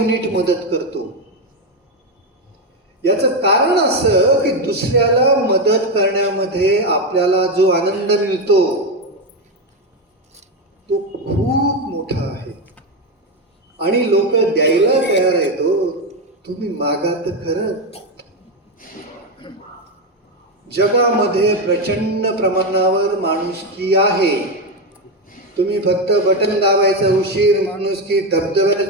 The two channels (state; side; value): normal; both; correlation 0.10